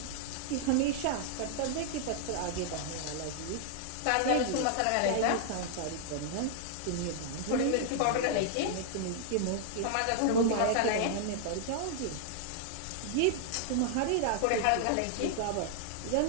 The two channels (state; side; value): different; both; correlation 0.00